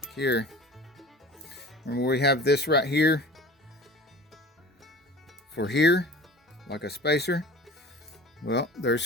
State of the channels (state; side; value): normal; both; correlation 0.41